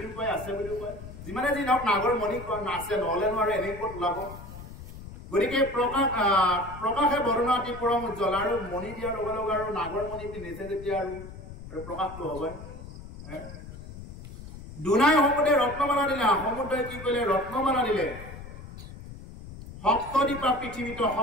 কয় আছে বুলি কয় যিমানে যি নহওক নাগৰ মণি আছে নহলে নোৱাৰে এনে ক'ত ওলাব গতিকে প্ৰকাশে বৰণা অতি পৰম উজ্জ্বল আৰু মণি দিয়াৰ লগে লগে আৰু নাগৰ মণি পিন্ধিছে যেতিয়া আৰু প্ৰকাশটো হ'বই দুনাই সমুদ্ৰে ৰত্নমালা দিলে সমুদ্ৰই কি কৰিলে ৰত্নমালা দিলে সপ্তদ্বীপা পৃথিৱীত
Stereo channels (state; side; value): noise; left; rumble, 13 dB below the sound